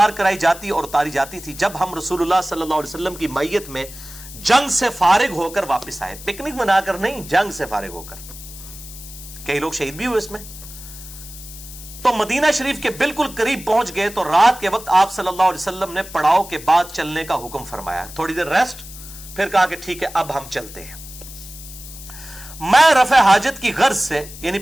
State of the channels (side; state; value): left; noise; hiss, 15 dB below the sound